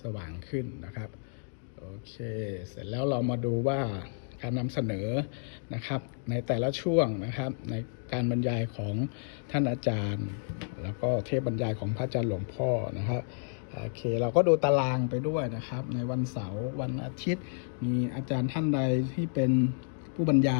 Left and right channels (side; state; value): right; silent; digital silence